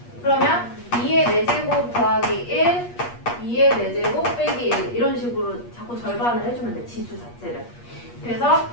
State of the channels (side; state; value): right; late; 8.4 ms